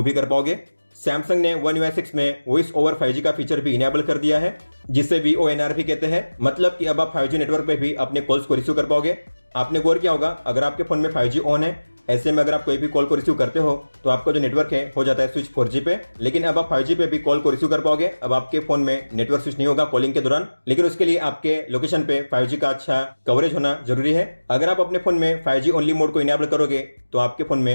भी कर पाओगे। सैमसंग ने One UI 6 में वॉइस ओवर 5G का फीचर भी इनेबल कर दिया है, जिसे VoNR भी कहते हैं। मतलब कि अब आप 5G नेटवर्क पे भी अपने कॉल्स को रिसीव कर पाओगे। आपने गौर किया होगा, अगर आपके फोन में 5G ऑन है, ऐसे में अगर आप कोई भी कॉल को रिसीव करते हो तो आपका जो नेटवर्क है हो जाता है स्विच 4G पे। लेकिन अब आप 5G पे भी कॉल को रिसीव कर पाओगे। अब आपके फोन में नेटवर्क स्विच नहीं होगा कॉलिंग के दौरान, लेकिन उसके लिए आपके लोकेशन पे 5G का अच्छा कवरेज होना जरूरी है। अगर आप अपने फोन में 5G ओनली मोड को इनेबल करोगे तो आपके फोन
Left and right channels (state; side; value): inverted; both; correlation -1.00